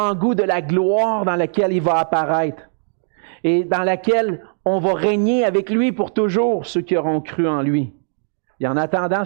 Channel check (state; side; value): silent; left; digital silence